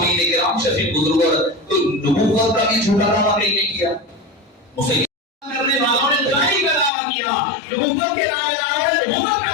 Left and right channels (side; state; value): right; drops out; at 6.9 s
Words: کرام شفیق بزرگ تو نبوت کا بھی جھوٹا دعویٰ نہیں کیا، مسلمان کرنے والوں نے دائی کا دعویٰ کیا، نبوت کے دعوے داروں نے نبوت کا